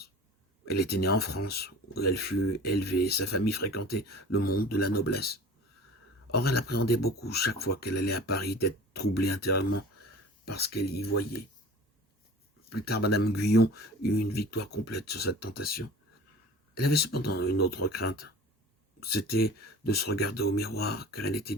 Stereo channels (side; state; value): both; normal; correlation 0.41